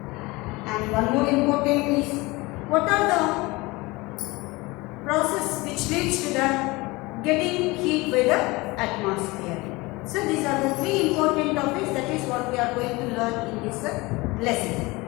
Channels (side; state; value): right; quieter; 22.9 dB